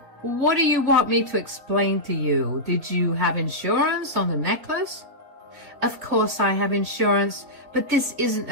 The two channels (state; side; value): late; left; 3.8 ms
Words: what do you want me to explain to you? Did you have insurance on the necklace? Of course I have insurance, but this isn't